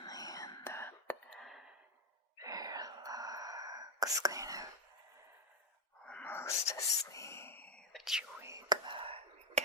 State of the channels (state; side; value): normal; both; correlation 0.04